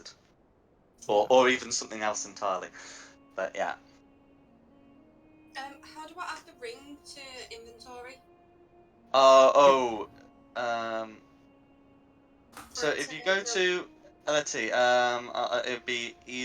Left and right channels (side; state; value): both; identical; correlation 1.00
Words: Or even something else entirely. But yeah. How do I add the ring to inventory? So For it if to you go build- to let's see, it'd be